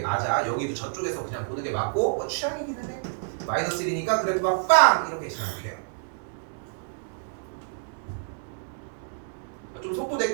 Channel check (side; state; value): left; silent; digital silence